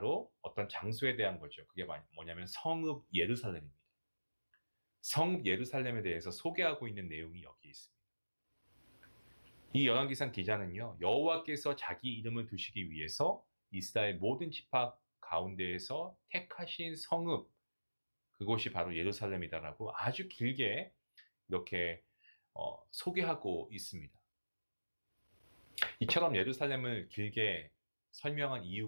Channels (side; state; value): both; inverted; correlation -1.00